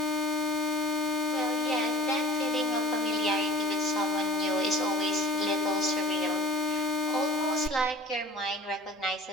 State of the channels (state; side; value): normal; both; correlation 0.43